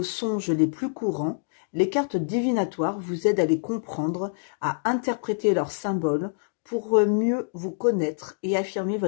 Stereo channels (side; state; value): right; silent; digital silence